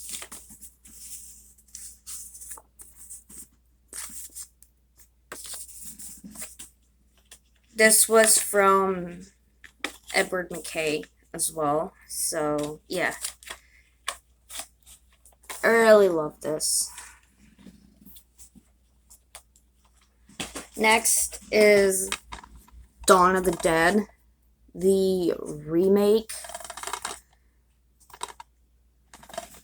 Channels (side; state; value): both; identical; correlation 1.00